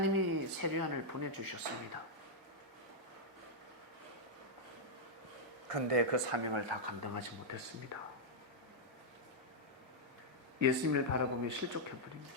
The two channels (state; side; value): normal; both; correlation -0.05